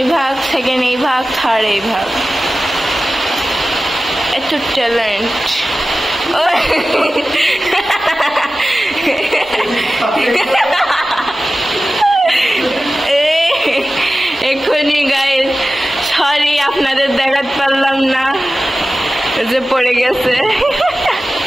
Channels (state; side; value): normal; both; correlation 0.95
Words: ভাগ সেকেন্ড এই ভাগ থার্ড এই ভাগ এত ট্যালেন্ট এখনই গাইস সরি আপনাদের দেখাতে পারলাম না যে পড়ে গেছে